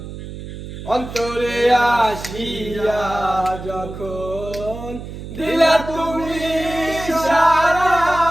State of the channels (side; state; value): right; noise; hum, 11 dB below the sound